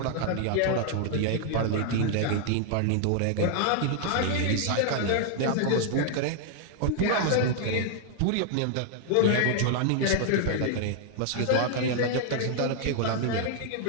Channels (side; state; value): both; different; correlation 0.00